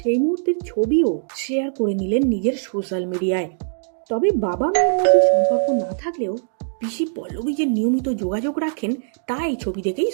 মুহূর্তের ছবিও শেয়ার করে নিলেন নিজের সোশ্যাল মিডিয়ায়। তবে বাবা মেয়ের মধ্যে সম্পর্ক না থাকলেও পিসি পল্লবী যে নিয়মিত যোগাযোগ রাখেন তা এই ছবি দেখেই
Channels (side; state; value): left; silent; digital silence